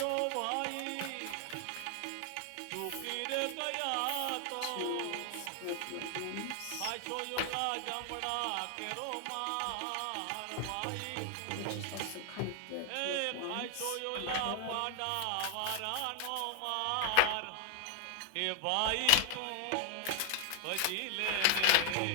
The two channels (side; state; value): both; different; correlation 0.00